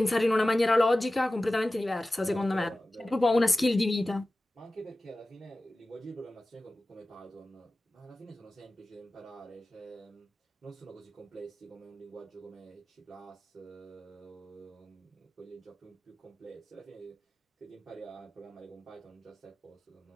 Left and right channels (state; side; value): normal; both; correlation 0.96